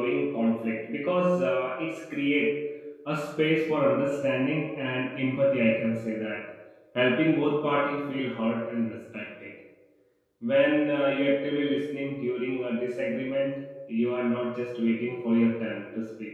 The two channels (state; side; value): identical; both; correlation 1.00